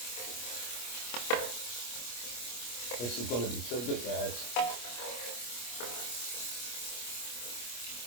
This is going to be so good, guys.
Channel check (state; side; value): late; right; 25 ms